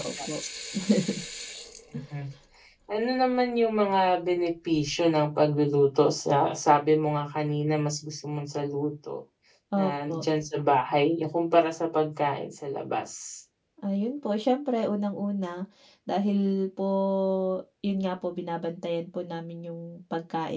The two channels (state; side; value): identical; both; correlation 1.00